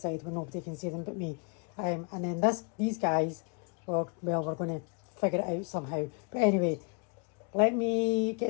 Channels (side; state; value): right; quieter; 35.6 dB